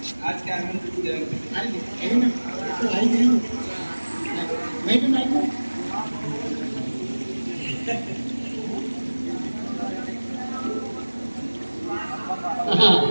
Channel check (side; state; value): both; inverted; correlation -1.00